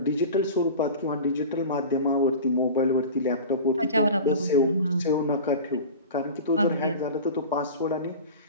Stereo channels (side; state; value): both; inverted; correlation -0.34